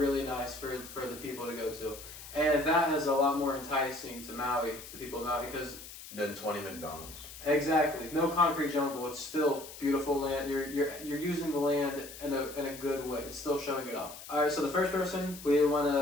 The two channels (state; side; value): noise; left; hiss, 14 dB below the sound